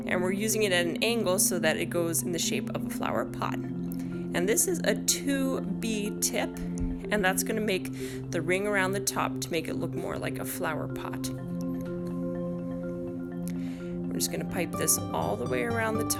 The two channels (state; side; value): identical; both; correlation 1.00